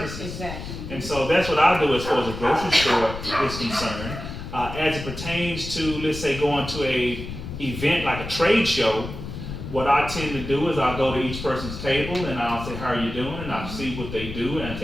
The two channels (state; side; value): noise; left; rumble, 9 dB below the sound